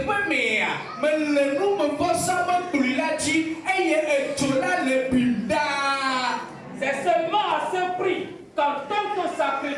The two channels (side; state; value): both; identical; correlation 1.00